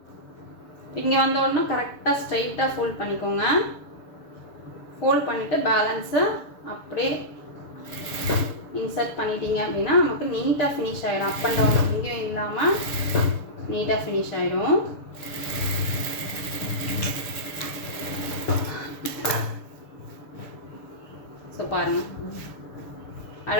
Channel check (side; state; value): right; late; 6.9 ms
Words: இங்கே வந்த உடனே கரெக்டாக ஸ்ட்ரைட்டாக ஃபோல்ட் பண்ணிக்கோங்க. ஃபோல்ட் பண்ணிவிட்டு பேலன்ஸை அப்படியே இன்சர்ட் பண்ணிட்டீங்க அப்படின்னா நமக்கு நீட்டாக ஃபினிஷ் ஆகிடும். அப் அண்ட் டவுன் எங்கேயும் இல்லாமல் நீட்டாக ஃபினிஷ் ஆகிடும். ஸோ பாருங்கள்,